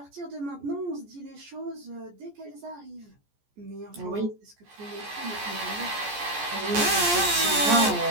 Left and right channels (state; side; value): late; left; 14 ms